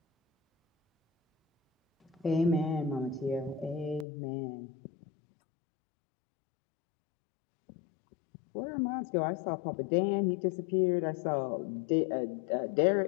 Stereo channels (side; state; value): right; drops out; at 4.0 s